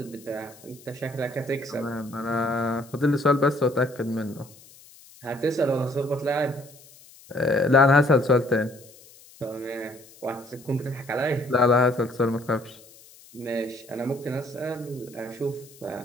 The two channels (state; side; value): noise; left; hiss, 23 dB below the sound